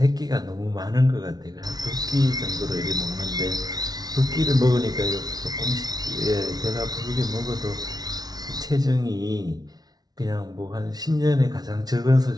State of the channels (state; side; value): late; left; 0.19 ms